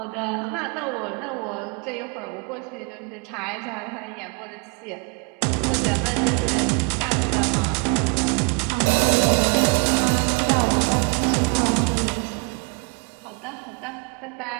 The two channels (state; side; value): quieter; left; 32.7 dB